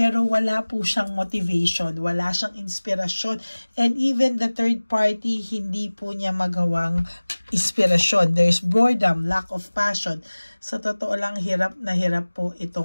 wala po siyang motivation, wala siyang inspirasyon, and even the third party, hindi po niya magawang inspirasyon. There's boredom, lack of passion. Sa totoo lang, hirap na hirap po ito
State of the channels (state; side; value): inverted; both; correlation -1.00